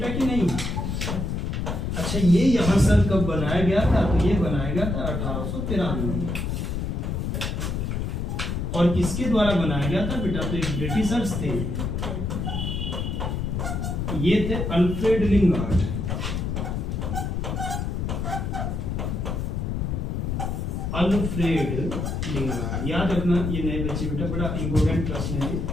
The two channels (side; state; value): left; noise; rumble, 2 dB below the sound